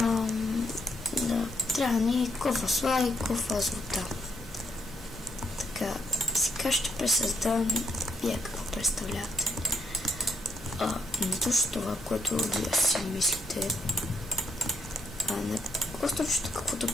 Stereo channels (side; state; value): both; normal; correlation 0.75